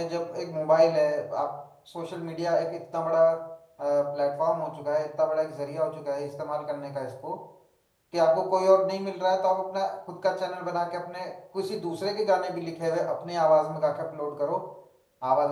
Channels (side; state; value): both; identical; correlation 1.00